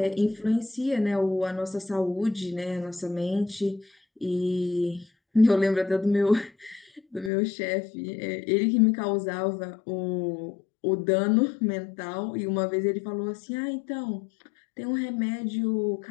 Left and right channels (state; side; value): drops out; right; at 7.3 s